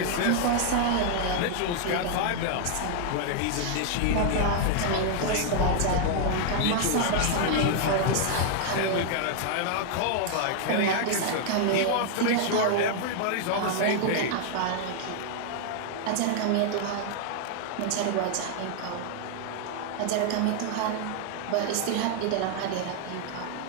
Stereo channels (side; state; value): both; different; correlation 0.00